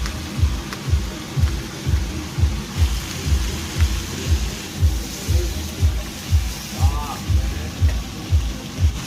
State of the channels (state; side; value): identical; both; correlation 1.00